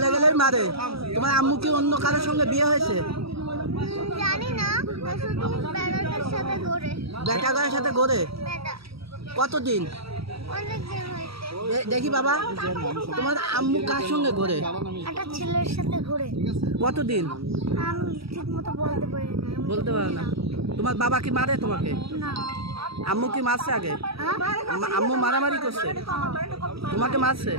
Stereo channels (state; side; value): late; left; 0.76 ms